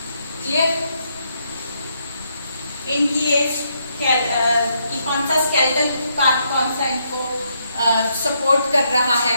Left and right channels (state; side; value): inverted; both; correlation -0.76